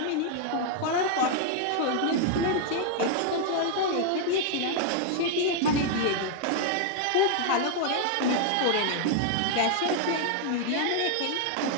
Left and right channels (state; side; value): different; both; correlation 0.00